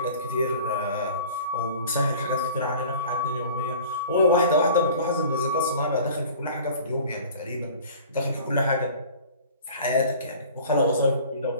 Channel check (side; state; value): both; inverted; correlation -0.44